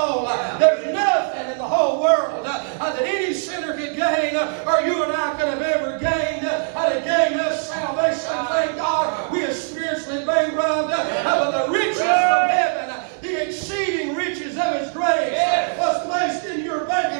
There's nothing in the whole world that any sinner could gain, or you and I could have ever gained, to gain us salvation. grace was placed in your bank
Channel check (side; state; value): left; silent; digital silence